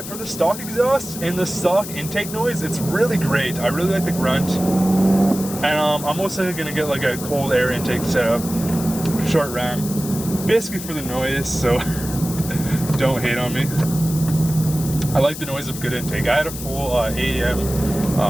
for the stock exhaust and the stock intake noise, it's really great. I really like the grunt. And I'm most likely gonna get like a cold air intake setup, short ram, basically for the noise, so don't hate on me. I like the noise of good intake. I had a full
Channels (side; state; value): left; noise; hiss, 10 dB below the sound